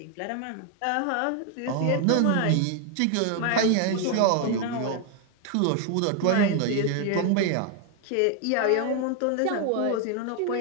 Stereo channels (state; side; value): different; both; correlation 0.01